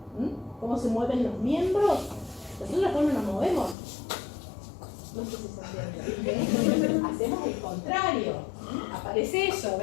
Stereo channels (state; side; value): drops out; right; at 3.8 s